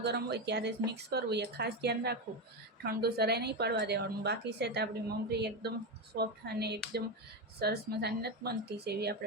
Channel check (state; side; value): normal; both; correlation 0.13